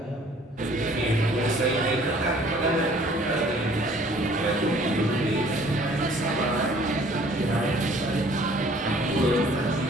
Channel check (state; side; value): normal; both; correlation 0.55